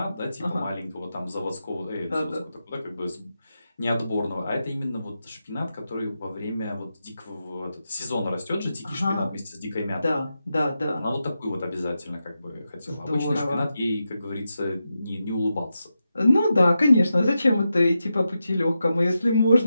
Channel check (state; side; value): inverted; both; correlation -0.89